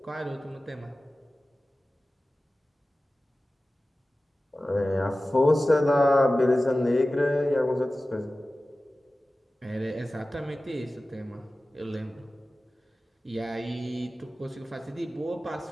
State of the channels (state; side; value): normal; both; correlation 0.96